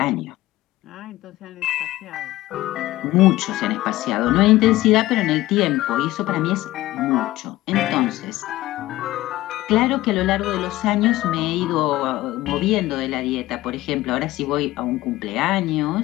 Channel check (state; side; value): quieter; right; 16.9 dB